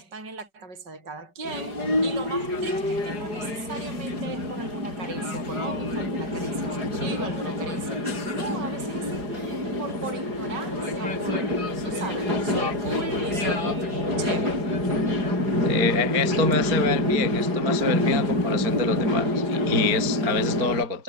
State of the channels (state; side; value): late; left; 5.3 ms